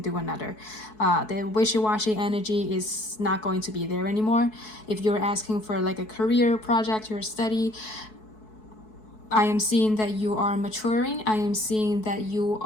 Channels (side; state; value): right; late; 4.6 ms